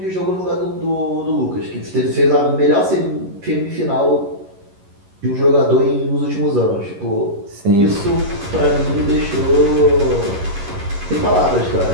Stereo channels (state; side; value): late; left; 11 ms